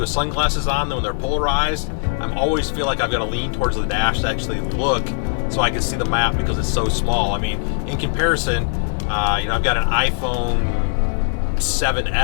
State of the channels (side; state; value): right; silent; 66 dB below the other